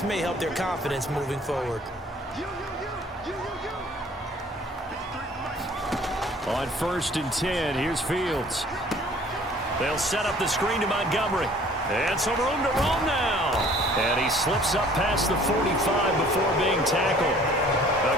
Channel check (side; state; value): both; normal; correlation 0.53